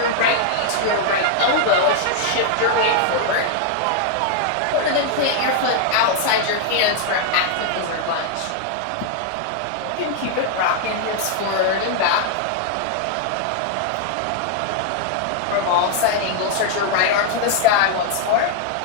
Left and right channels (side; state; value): both; different; correlation 0.00